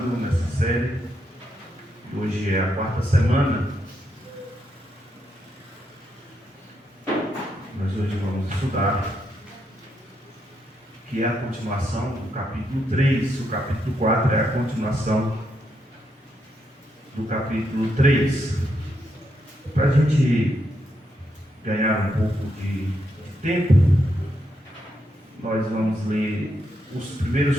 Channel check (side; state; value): both; normal; correlation 0.80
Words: nessa série. Hoje é a 4ª semana. Mas hoje vamos estudar, que é a continuação do capítulo 3. O capítulo 4 é a continuação do capítulo 3. Para a gente ganhar um pouco de tempo, nós vamos ler os